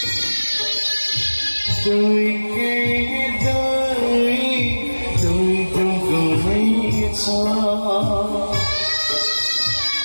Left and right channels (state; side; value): inverted; both; correlation -1.00